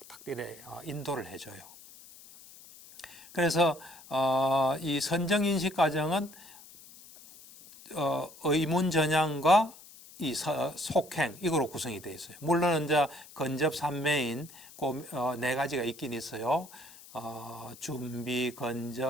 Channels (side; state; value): left; noise; hiss, 20 dB below the sound